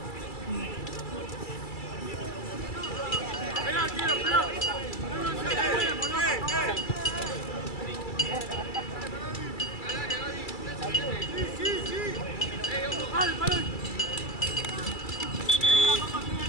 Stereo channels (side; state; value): right; late; 2.3 ms